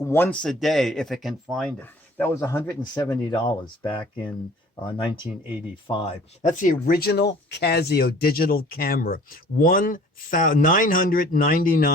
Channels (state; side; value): normal; both; correlation 0.50